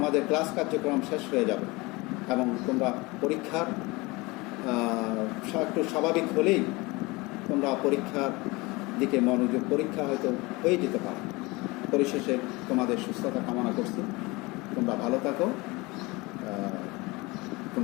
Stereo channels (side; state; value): right; quieter; 23.8 dB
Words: ক্লাস কার্যক্রম শেষ হয়ে যাবে এবং তোমরা পরীক্ষার একটু স্বাভাবিক হলেই তোমরা পরীক্ষার দিকে মনোযোগ, পরীক্ষা হয়তো হয়ে যেতে পারে। পরিশেষে তোমাদের সুস্থতা কামনা করছি। তোমরা ভালো থাকো।